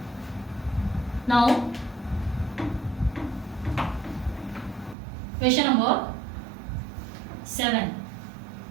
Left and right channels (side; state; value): left; drops out; at 5.0 s